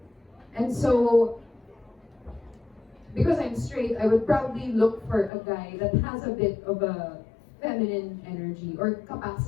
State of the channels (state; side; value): drops out; right; at 5.3 s